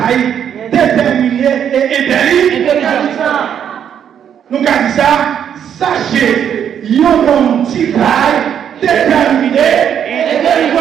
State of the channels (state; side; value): quieter; left; 8.8 dB